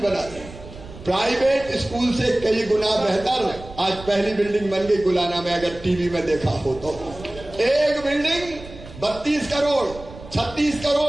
रहे हैं, प्राइवेट स्कूल से कई गुना बेहतर। आज पहली बिल्डिंग बन गई गुलाना में, अगर टीवी में देखा हो तो। एक बिल्डिंग 32 करोड़, 36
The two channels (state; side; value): noise; right; rumble, 16 dB below the sound